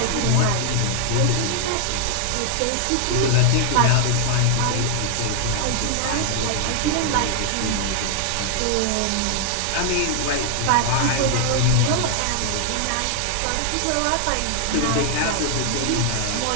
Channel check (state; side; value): different; both; correlation 0.00